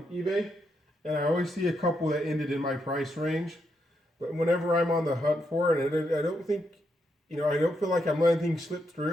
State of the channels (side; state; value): both; normal; correlation 0.80